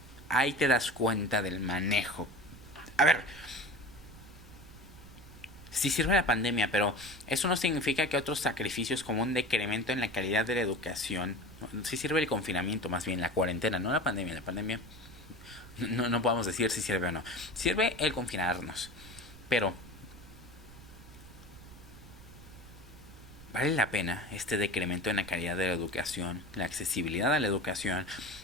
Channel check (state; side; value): noise; right; rumble, 18 dB below the sound